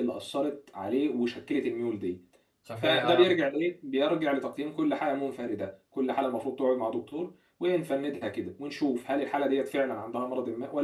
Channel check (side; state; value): both; identical; correlation 1.00